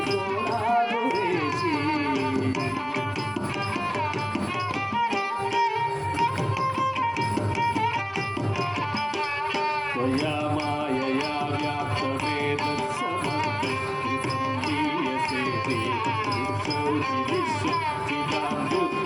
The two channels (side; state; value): both; identical; correlation 1.00